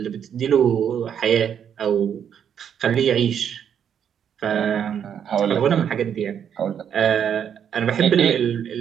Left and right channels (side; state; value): left; quieter; 8.5 dB